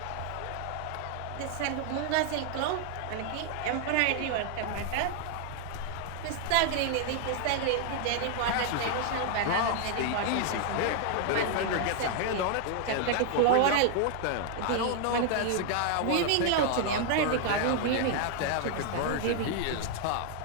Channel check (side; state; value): both; different; correlation 0.00